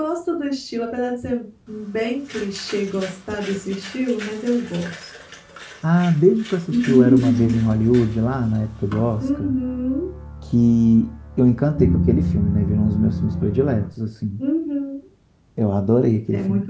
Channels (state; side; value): identical; both; correlation 1.00